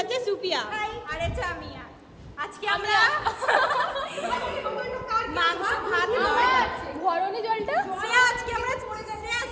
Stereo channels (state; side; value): identical; both; correlation 1.00